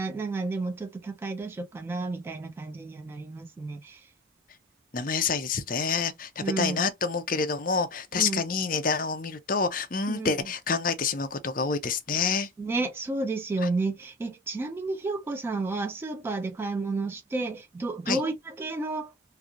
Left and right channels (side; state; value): both; normal; correlation 0.34